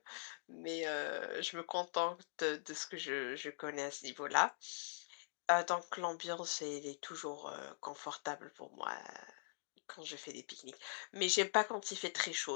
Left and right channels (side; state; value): right; silent; digital silence